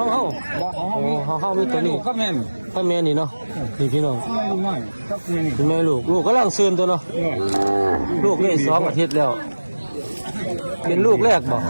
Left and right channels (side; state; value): both; inverted; correlation -1.00